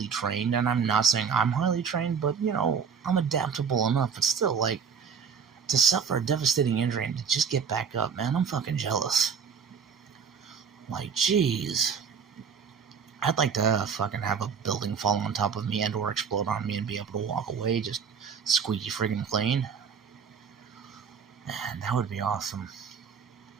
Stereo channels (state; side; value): quieter; left; 6.5 dB